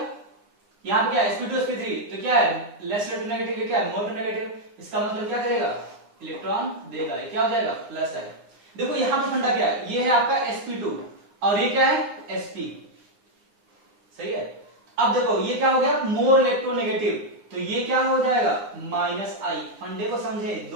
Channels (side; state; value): left; late; 9.8 ms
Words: यहां पे क्या sp2 sp3, तो क्या है लेस इलेक्ट्रोनेगेटिव, क्या है मोर नेगेटिव, इसका मतलब क्या करेगा, इलेक्ट्रॉन देगा, ये क्या हो जाएगा प्लस है। देखो यहां पर फंडा क्या है, ये है आपका sp2 और ये क्या है sp, सही है। अब देखो ये क्या हो गया, मोर इलेक्ट्रोनेगेटिव, तो ये क्या हो जाएगा -I। फंडे को समझे,